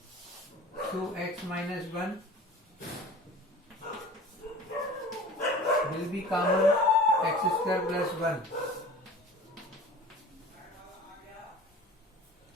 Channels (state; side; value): normal; both; correlation 0.41